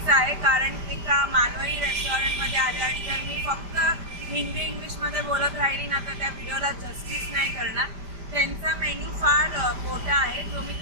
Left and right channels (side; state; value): left; late; 5.0 ms